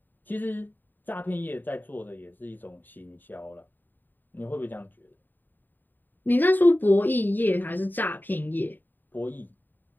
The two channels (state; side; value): late; right; 0.090 ms